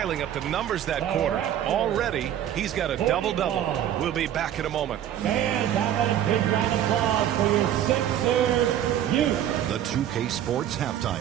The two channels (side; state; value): left; quieter; 10.9 dB